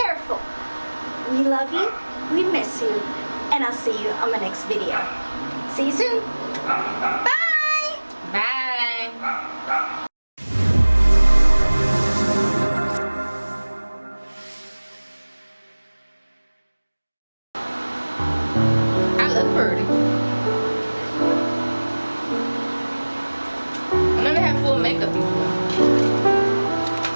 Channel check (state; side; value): inverted; both; correlation -1.00